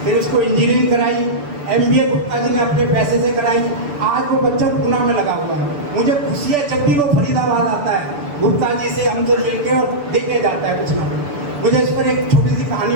फिर उसको इंजीनियरिंग कराई, MBA गुप्ता जी ने अपने पैसे से कराई। आज वो बच्चा पूना में लगा हुआ है। मुझे खुशी है जब भी वो फरीदाबाद आता है, गुप्ता जी से हमसे मिलके और देके जाता है कुछ ना कुछ। मुझे इस पर एक छोटी सी कहानी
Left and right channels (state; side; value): late; left; 6.9 ms